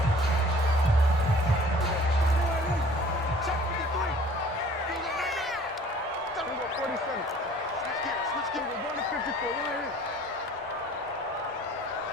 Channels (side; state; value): both; normal; correlation 0.51